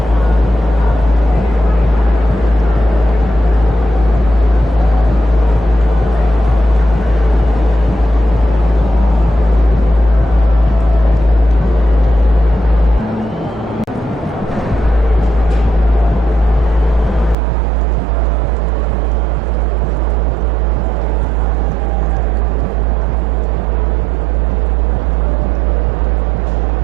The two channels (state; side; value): drops out; left; at 17.4 s